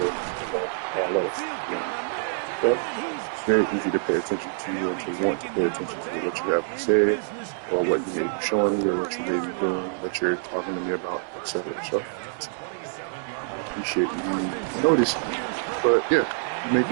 I love it. But it's very easy to pay attention to you and to want to pay attention to what you have to say or what you may be showing me or what you may be doing, what you're talking to me about, etc. So I appreciate you noticing. But yeah, you make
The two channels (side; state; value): left; silent; digital silence